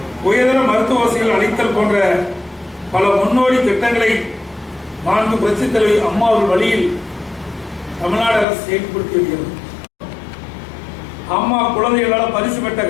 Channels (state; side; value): drops out; right; at 8.5 s